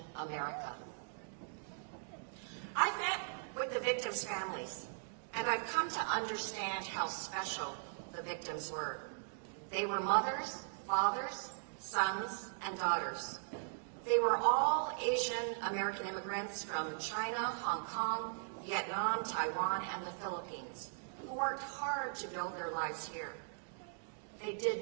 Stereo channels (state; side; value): silent; left; digital silence